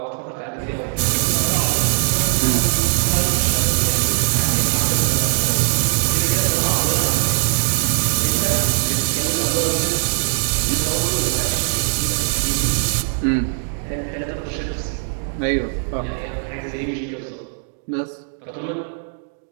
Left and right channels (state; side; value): silent; left; digital silence